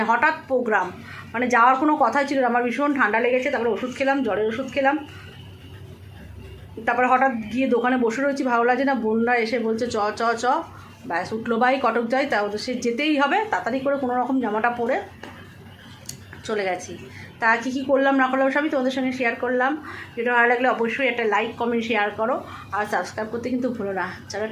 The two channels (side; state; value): both; identical; correlation 1.00